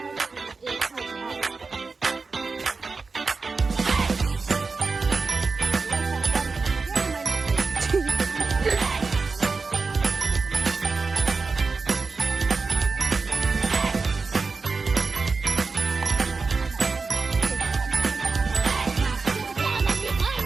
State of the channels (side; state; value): left; quieter; 4.3 dB